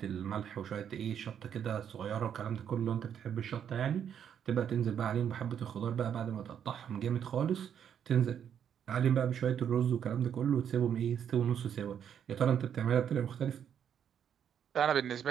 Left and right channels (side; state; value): left; quieter; 8.7 dB